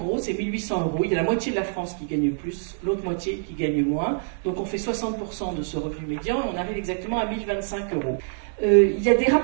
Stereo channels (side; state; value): left; silent; digital silence